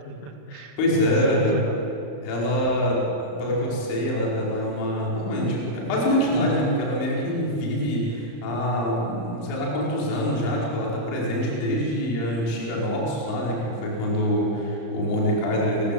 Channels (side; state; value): right; late; 35 ms